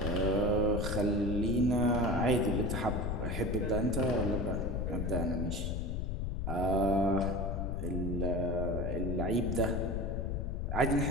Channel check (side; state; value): left; noise; rumble, 2 dB below the sound